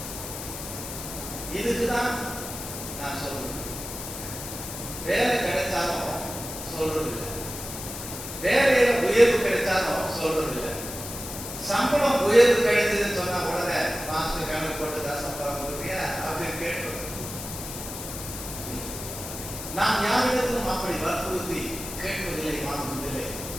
இதுக்குதான் நான் சொல்றேன். வேலை கிடைச்சாலும் சொல்றது இல்லை, வேலையில உயர்வு கிடைச்சாலும் சொல்றது இல்லை. சம்பளம் உயர்வு கிடைச்சதுன்னு சொன்னா உடனே மாஸ்டர் கணக்கு போட்டுதான் சம்பளம் கொடுக்குறியா அப்படின்னு கேட்டு நாம் யாரிடத்திலும் அப்படி வற்புறுத்தி கேட்பதில்லை, வாங்குவதில்லை.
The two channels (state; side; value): noise; left; hiss, 9 dB below the sound